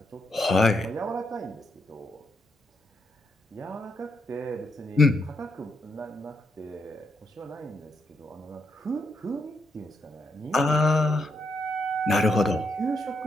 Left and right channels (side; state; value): both; normal; correlation 0.79